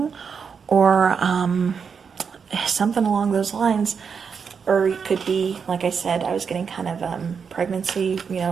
or something along those lines, or it could be, like I said, I was getting kind of pregnancy,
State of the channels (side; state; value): left; quieter; 6.2 dB